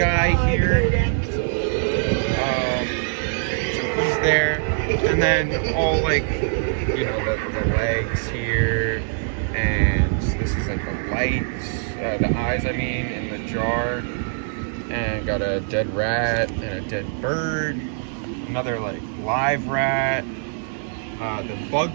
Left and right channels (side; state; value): left; silent; digital silence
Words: here. So he's there. And then all like, you know, the legs here. And this is like the lights, the eyes, I mean, in the jar. And got a dead rat and a dead bird. Another like live rat. The bug